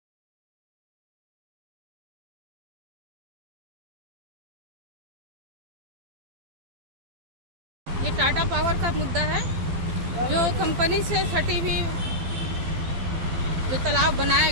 ये टाटा पावर का मुद्दा है, जो कंपनी से सटी हुई जो तालाब बनाया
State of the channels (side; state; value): left; late; 12 ms